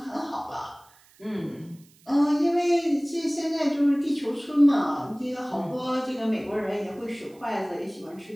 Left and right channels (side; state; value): right; noise; hiss, 29 dB below the sound